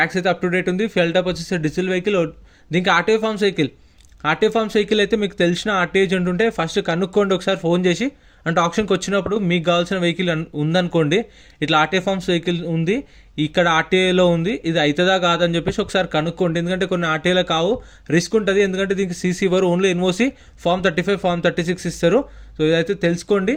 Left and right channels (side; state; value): both; identical; correlation 1.00